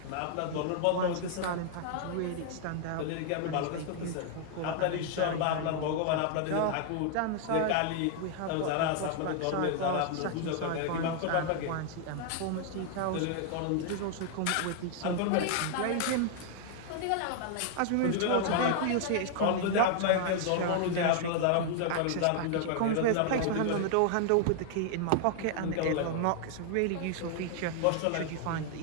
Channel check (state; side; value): different; both; correlation 0.00